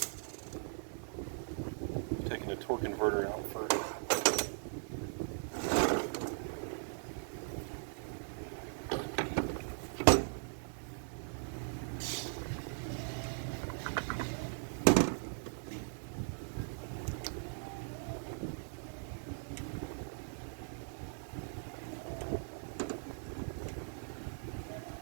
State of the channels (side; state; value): left; silent; digital silence